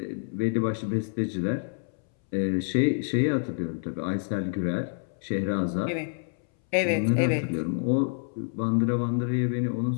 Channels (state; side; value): silent; right; 60 dB below the other